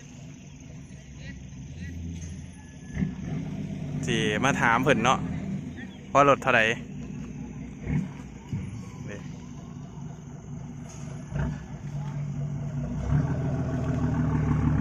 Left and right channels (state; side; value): identical; both; correlation 1.00